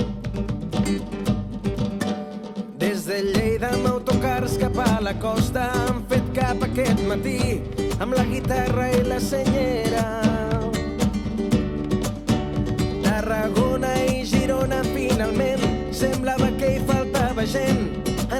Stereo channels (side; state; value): both; identical; correlation 1.00